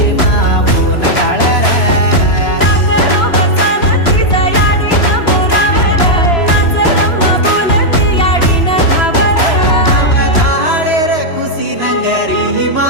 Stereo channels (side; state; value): right; late; 3.0 ms